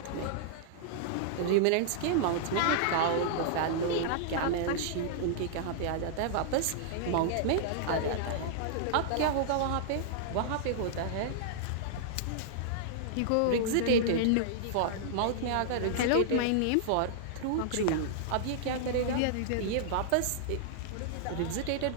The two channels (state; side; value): different; both; correlation -0.01